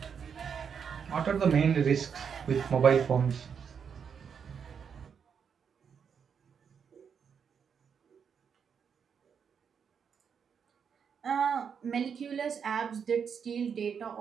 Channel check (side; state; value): left; quieter; 6.9 dB